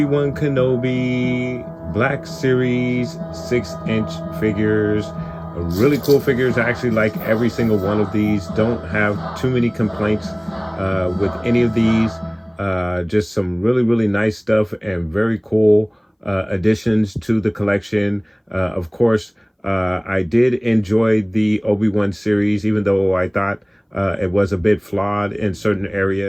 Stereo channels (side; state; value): both; identical; correlation 1.00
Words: Wan Kenobi Black Series 6-inch figures. Really cool figures. I actually like every single one of these. Don't have too many complaints with any of these. Just some really nice stuff and very cool additions to the collection. Of course, I did enjoy the Obi Wan series, even though I thought it was a bit flawed in certain